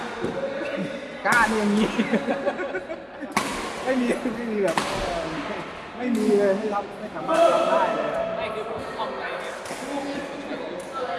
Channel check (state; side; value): identical; both; correlation 1.00